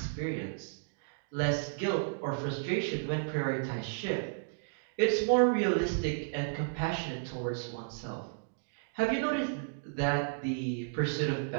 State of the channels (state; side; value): silent; left; digital silence